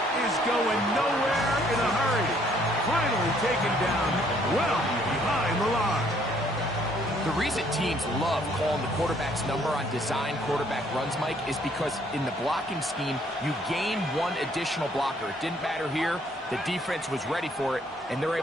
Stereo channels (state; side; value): normal; both; correlation 0.64